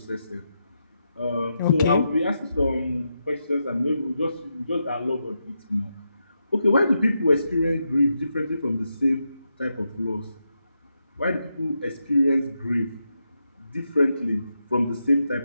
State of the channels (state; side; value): inverted; both; correlation -0.85